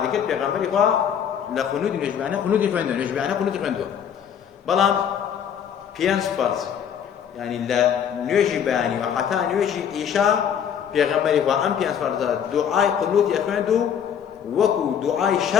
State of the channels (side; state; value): right; quieter; 8.4 dB